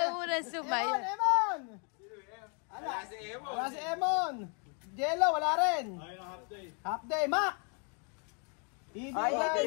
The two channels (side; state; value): right; quieter; 38.0 dB